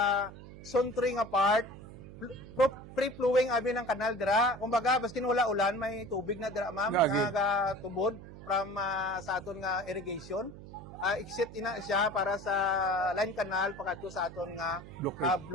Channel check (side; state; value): right; noise; hum, 15 dB below the sound